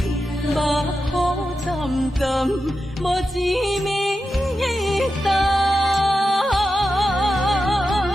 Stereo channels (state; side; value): normal; both; correlation 0.90